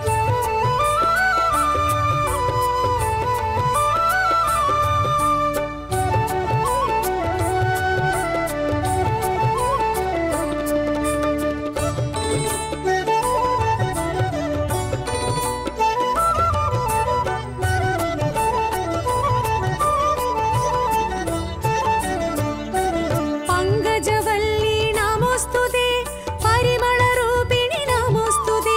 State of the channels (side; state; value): both; identical; correlation 1.00